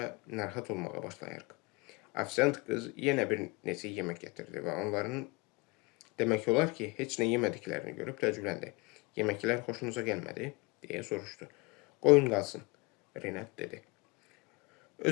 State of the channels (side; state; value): right; quieter; 26.9 dB